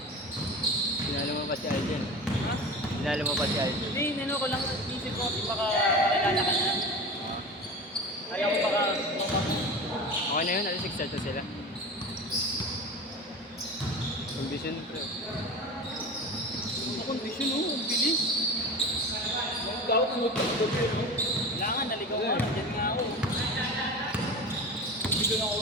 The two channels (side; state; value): both; normal; correlation 0.31